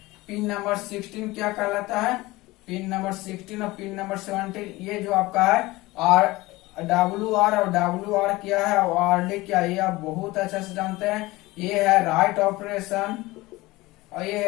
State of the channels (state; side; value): quieter; right; 20.2 dB